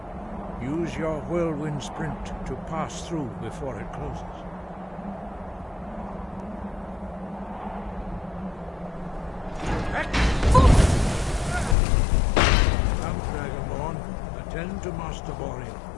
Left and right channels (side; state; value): right; drops out; at 11.8 s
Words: Use your whirlwind sprint to pass through before it closes. Attend to Master Bori.